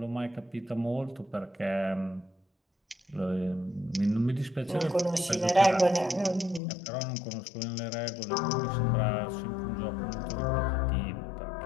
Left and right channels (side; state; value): right; drops out; at 6.6 s